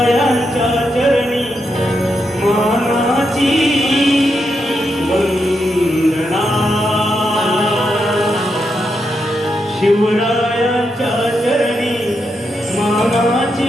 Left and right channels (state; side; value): normal; both; correlation 0.83